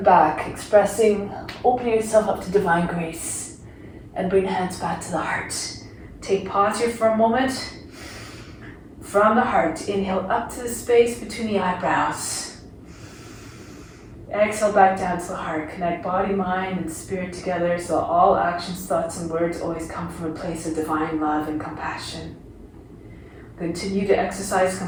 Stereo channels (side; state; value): both; identical; correlation 1.00